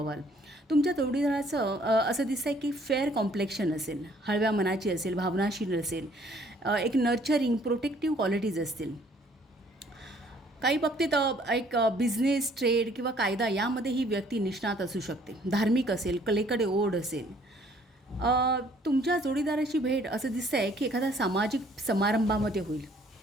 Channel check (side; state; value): both; normal; correlation 0.61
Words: तुमच्या जोडीदाराचं असं दिसतं आहे की फेअर कॉम्प्लेक्शन असेल, हळव्या मनाची असेल, भावनाशील असेल, एक नर्चरिंग प्रोटेक्टिव्ह क्वालिटीज असतील. काही बाबतीत एक बिझनेस, ट्रेड किंवा कायदा यामध्ये ही व्यक्ती निष्णात असू शकते. धार्मिक असेल, कलेकडे ओढ असेल. तुमच्या जोडीदाराची भेट असं दिसतं आहे की एखाद्या सामाजिक समारंभामध्ये होईल.